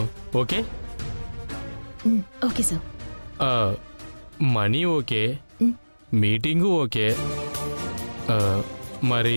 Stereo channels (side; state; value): both; inverted; correlation -1.00